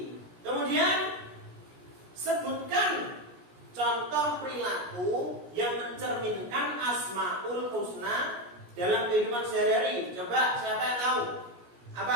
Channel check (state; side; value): late; left; 17 ms